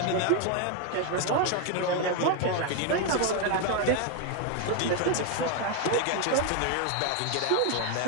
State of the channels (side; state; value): both; different; correlation 0.01